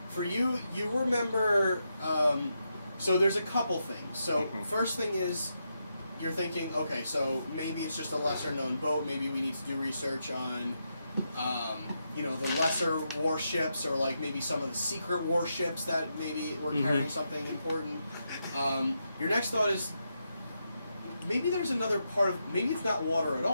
For you, you remember. So there's a couple things. So Mhm. first thing is, you're thinking, okay, so maybe it's just a lesser known boat. Maybe we need to do research on, the lesser warships, or like maybe some of the secret warships that maybe were carrying something important. Your next thought is, maybe there's another part of, maybe it's not water at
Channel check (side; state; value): both; inverted; correlation -0.84